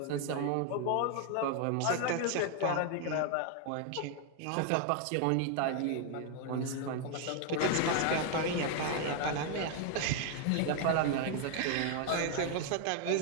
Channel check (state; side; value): different; both; correlation 0.01